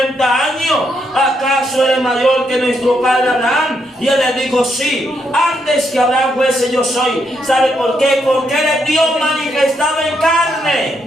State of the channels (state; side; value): normal; both; correlation 0.78